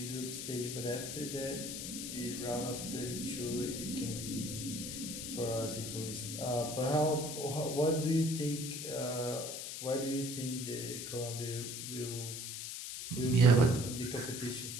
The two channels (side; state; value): left; noise; hiss, 6 dB below the sound